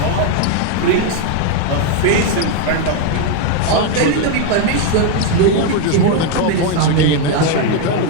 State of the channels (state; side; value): different; both; correlation 0.01